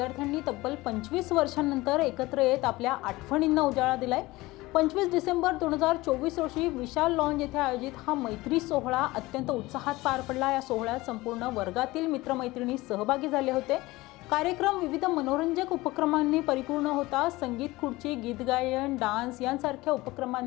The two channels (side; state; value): right; quieter; 20.0 dB